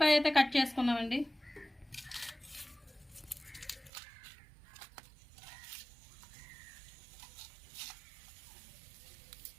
అయితే కట్ చేసుకుందామండి.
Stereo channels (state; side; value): drops out; left; at 3.9 s